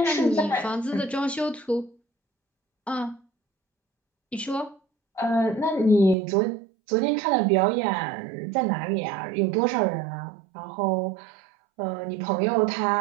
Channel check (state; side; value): drops out; left; at 6.2 s